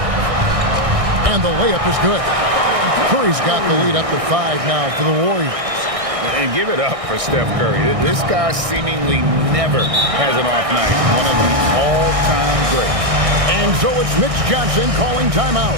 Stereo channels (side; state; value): left; late; 1.6 ms